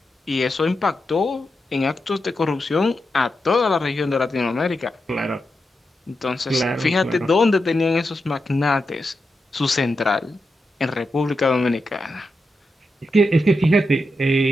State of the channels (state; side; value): normal; both; correlation 0.87